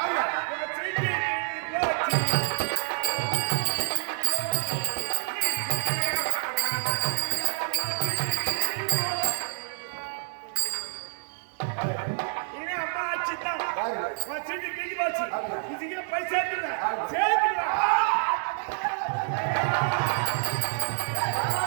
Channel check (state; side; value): silent; left; digital silence